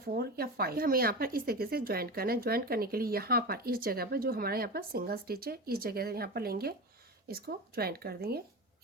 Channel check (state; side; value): normal; both; correlation 0.25